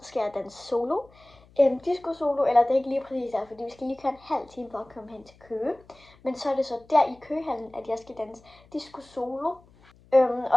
skal jeg danse solo. Disco solo, eller det er ikke lige præcis der, fordi vi skal lige køre en halv time for at komme hen til Køge. Men så er det så der i Køgehallen, at jeg skal danse disco solo.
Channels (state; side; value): noise; left; hum, 27 dB below the sound